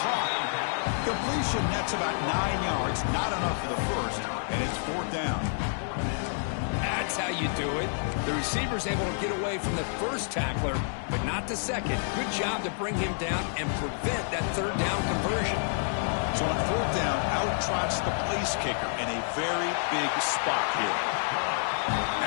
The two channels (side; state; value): right; silent; digital silence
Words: caught. Completion nets about 9 yards. Not enough for the first, and it's fourth down. That's how you do it. The receiver's able to get away from the first tackler, but not the second. Good job to bring him down and prevent that third down conversion. So on fourth down, out trots the place kicker in a very big spot here.